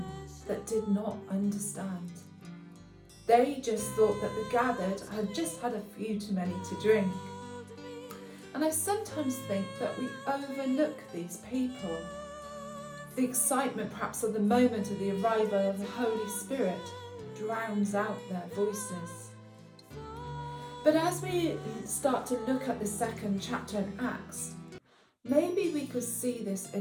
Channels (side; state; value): both; identical; correlation 1.00